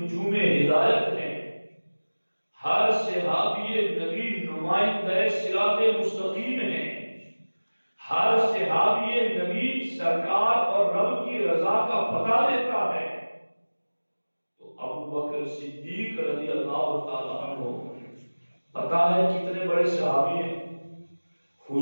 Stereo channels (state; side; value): inverted; both; correlation -1.00